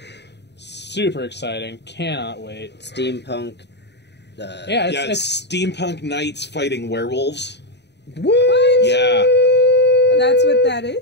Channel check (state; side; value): late; right; 0.50 ms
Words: Super exciting. Cannot wait. Steampunk. It's steampunk knights fighting werewolves. What? Yeah. That's what that